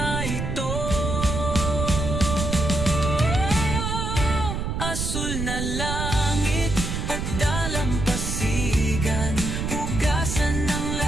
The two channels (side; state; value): right; noise; rumble, 2 dB below the sound